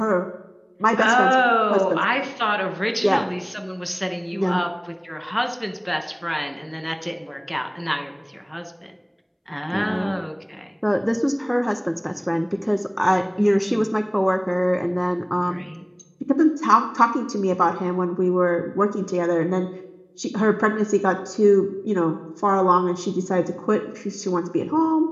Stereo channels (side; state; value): both; identical; correlation 1.00